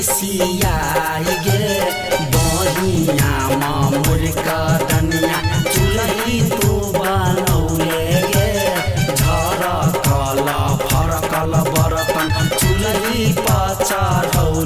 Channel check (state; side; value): identical; both; correlation 1.00